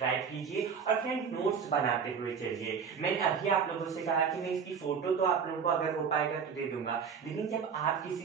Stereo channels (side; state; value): left; quieter; 6.5 dB